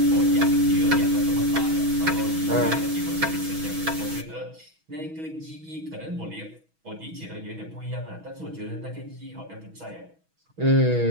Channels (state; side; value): late; left; 6.2 ms